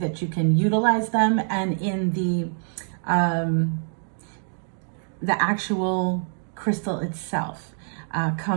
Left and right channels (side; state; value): left; silent; 62 dB below the other